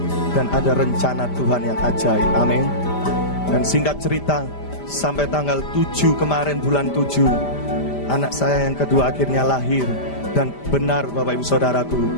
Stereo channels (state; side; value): late; right; 5.0 ms